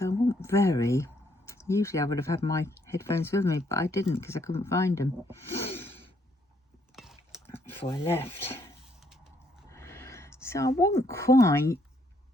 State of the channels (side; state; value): both; normal; correlation 0.71